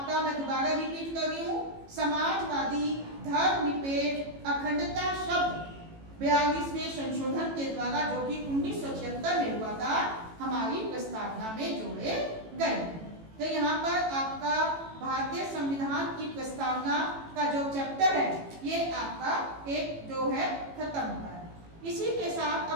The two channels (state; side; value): late; left; 18 ms